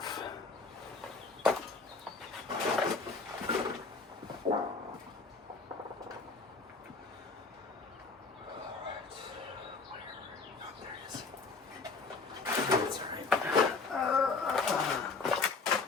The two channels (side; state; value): right; quieter; 4.2 dB